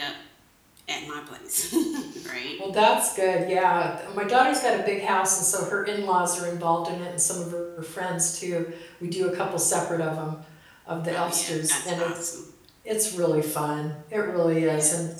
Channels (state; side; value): identical; both; correlation 1.00